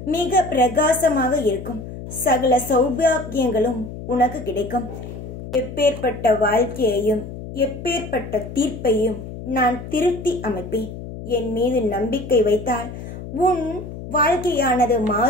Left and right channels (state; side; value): noise; left; hum, 11 dB below the sound